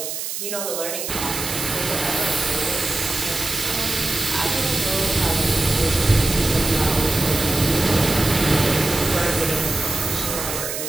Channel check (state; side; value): noise; right; hiss, 5 dB below the sound